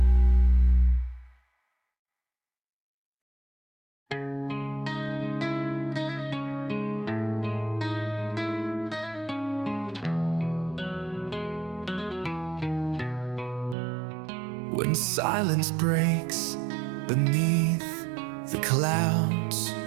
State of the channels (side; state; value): left; drops out; at 13.8 s